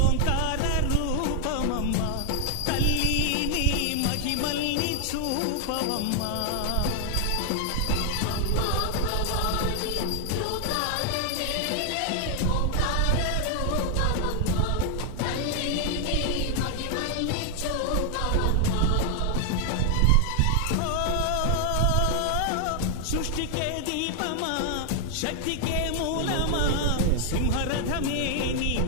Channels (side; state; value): both; different; correlation 0.00